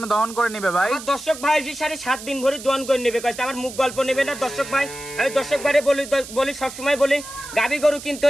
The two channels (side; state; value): right; noise; hiss, 13 dB below the sound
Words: দহন করে নেবে ভাই। আমার দর্শক ভাই জি 7.5 দিন ভরে দহন করে নেবে কইছে। আমার মুখ গল্প নেবে না দর্শক ভাই। আমি দর্শক ভাইরে বলি সব সময় বলি, গাবি গরু কিনতে